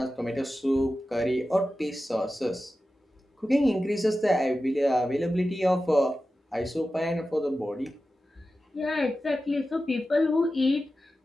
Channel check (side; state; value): both; normal; correlation 0.93